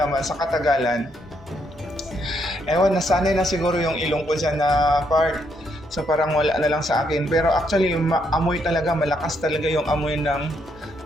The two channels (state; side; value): normal; both; correlation 0.75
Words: sa katagalan, ewan, nasanay na siguro yung ilong ko dyan na part. So parang wala na lang sa akin. Pero actually, amoy talaga, malakas talaga yung amoy ng